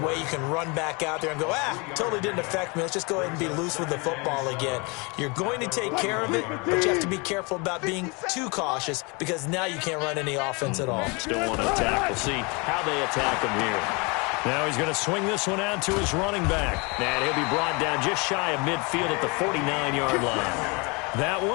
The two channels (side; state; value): right; quieter; 29.3 dB